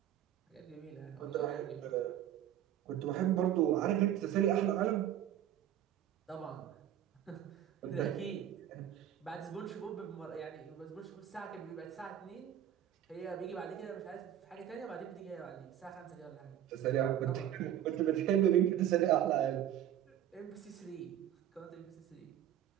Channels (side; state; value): left; quieter; 11.1 dB